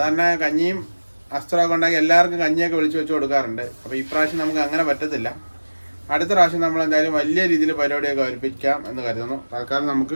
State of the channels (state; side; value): inverted; both; correlation -1.00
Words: കഞ്ഞിയും അസ്ത്രമൊക്കെ ഉണ്ടാക്കി എല്ലാവർക്കും കഞ്ഞിയൊക്കെ വിളിച്ച് വെച്ച് കൊടുക്കാറുണ്ട്. അപ്പോൾ ഈ പ്രാവശ്യം നമുക്ക് അങ്ങനെ പറ്റത്തില്ല. അടുത്ത പ്രാവശ്യം നമ്മൾ എന്തായാലും വലിയ രീതിയിൽ പരിപാടിയൊക്കെ അവതരിപ്പിക്കാം എന്ന് കരുതുന്നു. തൽക്കാലം